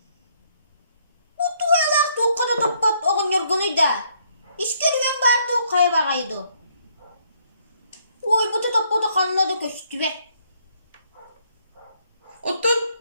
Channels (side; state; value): both; inverted; correlation -0.68